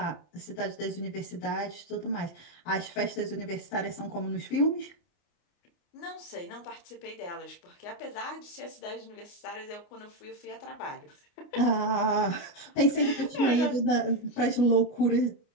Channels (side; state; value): right; late; 29 ms